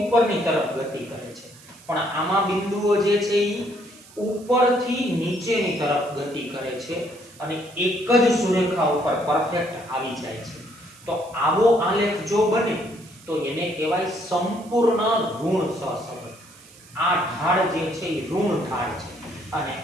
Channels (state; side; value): noise; right; hiss, 23 dB below the sound